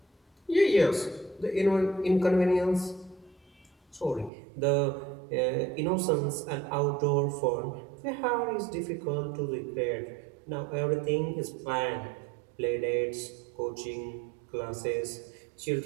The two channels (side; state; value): left; drops out; at 4.3 s